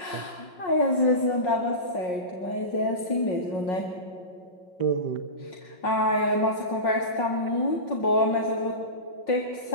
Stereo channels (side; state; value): right; late; 5.5 ms